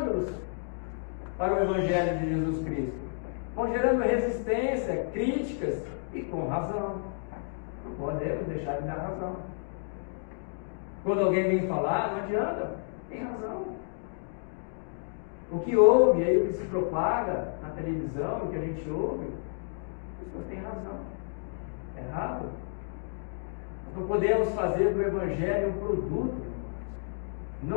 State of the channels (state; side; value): silent; right; digital silence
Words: para o Evangelho de Jesus Cristo. Vão gerando resistência, críticas, e com razão. Não podemos deixar de dar razão. Quando alguém vem falar, não adianta, tem razão. O que ouve, aí o que se propaga na televisão, o que a gente ouve, as pessoas têm razão. É errado. Nós não podemos fazer do Evangelho um produto.